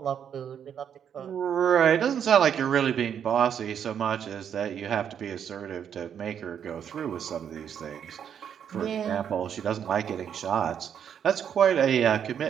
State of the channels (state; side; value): quieter; left; 8.4 dB